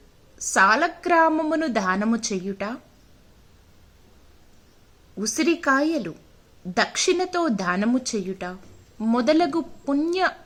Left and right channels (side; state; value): both; identical; correlation 1.00